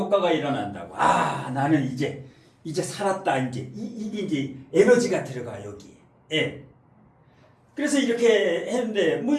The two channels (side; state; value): both; identical; correlation 1.00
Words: 일어난다고. 아, 나는 이제 살았다. 이게 이제 에너지가 들어가 여기에. 그래서 이렇게 했는데